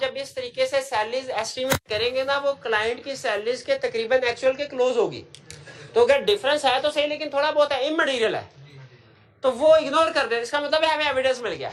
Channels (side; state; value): both; identical; correlation 1.00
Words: इस तरीके से सैलरीज एस्टिमेट करेंगे ना, वो क्लाइंट की सैलरीज के तकरीबन एक्चुअल के क्लोज होगी। तो अगर डिफरेंस है तो सही, लेकिन थोड़ा बहुत है, इमटेरियल है, तो वो इग्नोर कर दे। इसका मतलब है हमें एविडेंस मिल गया,